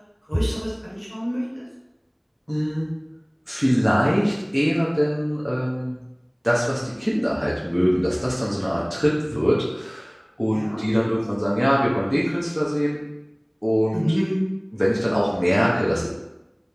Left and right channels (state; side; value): identical; both; correlation 1.00